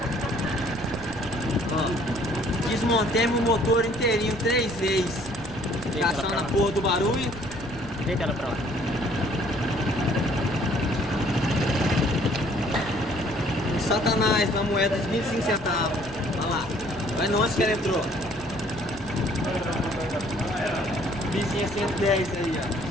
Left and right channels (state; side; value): noise; left; rumble, 17 dB below the sound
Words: Ó. Desmontemos o motor inteirinho 3 vezes. Caçando a porra do barulho. Deita ela pra lá. Satanás, uma moeda de 25 centavos. Olha lá. Olha onde que ela entrou. Vizinha 110 aí,